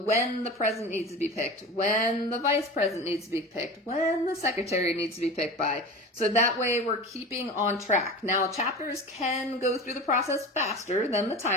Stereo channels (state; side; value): normal; both; correlation 0.32